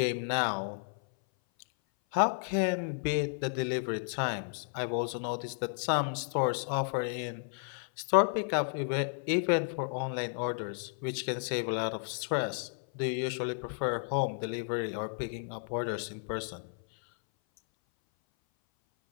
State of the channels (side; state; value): right; silent; 56 dB below the other